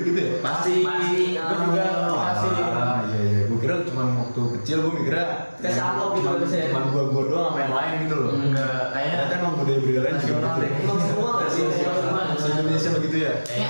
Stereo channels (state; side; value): inverted; both; correlation -1.00